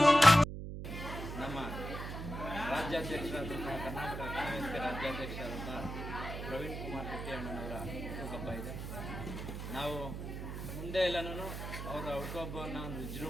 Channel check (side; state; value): right; noise; hum, 6 dB below the sound